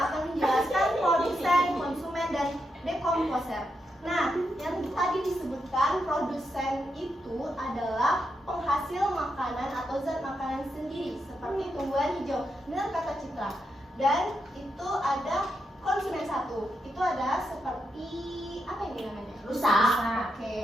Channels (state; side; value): normal; both; correlation 0.84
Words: menjelaskan produsen, konsumen, dan dekomposer. Nah, yang tadi disebutkan produsen itu adalah penghasil makanan atau zat makanan sendiri seperti tumbuhan hijau. Benar kata Citra. Dan itu ada konsumen satu. Itu ada seperti apa ini namanya? Rusa.